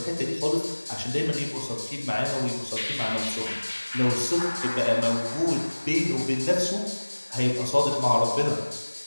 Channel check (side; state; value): both; inverted; correlation -1.00